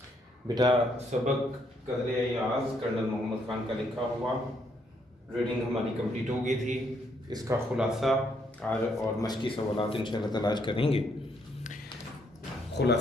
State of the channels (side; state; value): both; normal; correlation 0.72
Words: बेटा सबक कदर याज़ कर्नल मोहम्मद ख़ान का लिखा हुआ रीडिंग हमारी कंप्लीट हो गई थी। इसका ख़ुलासा और मशक़ी सवालात इंशाअल्लाह ताला आज करेंगे।